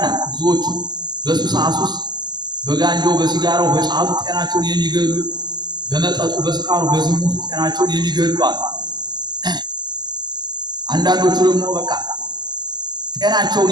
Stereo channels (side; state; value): left; late; 0.21 ms